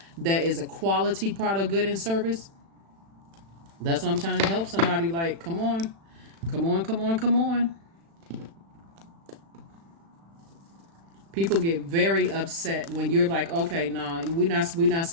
that is a quality product, good and service. That's what I'm trying to help somebody. Like, come on. Come on, come on, come on. People get very upset when you're like, okay, nah, we're not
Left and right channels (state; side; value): late; left; 36 ms